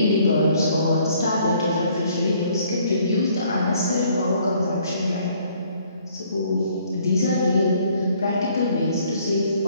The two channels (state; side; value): inverted; both; correlation -0.62